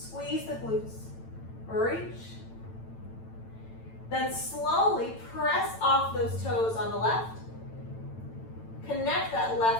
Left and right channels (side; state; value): right; late; 9.0 ms